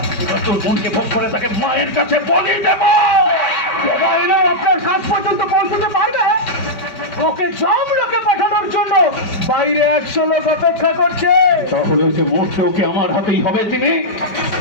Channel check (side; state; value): right; late; 4.9 ms